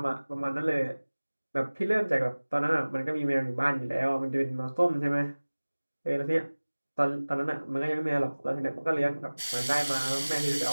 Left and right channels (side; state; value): both; inverted; correlation -1.00